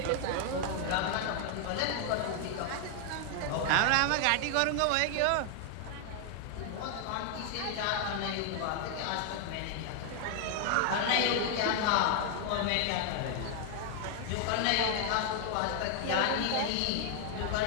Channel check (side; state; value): both; different; correlation 0.00